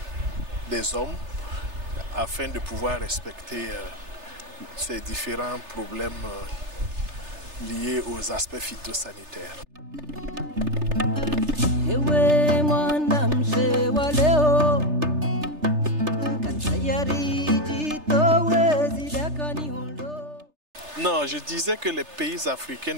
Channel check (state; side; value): late; left; 3.3 ms